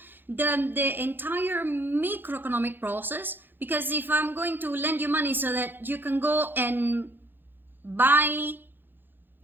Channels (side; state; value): left; late; 0.097 ms